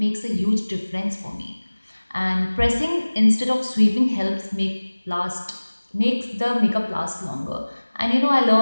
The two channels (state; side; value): inverted; both; correlation -1.00